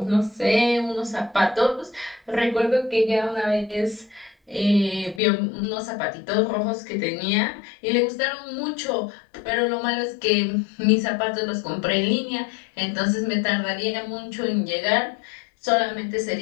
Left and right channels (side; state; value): right; drops out; at 5.2 s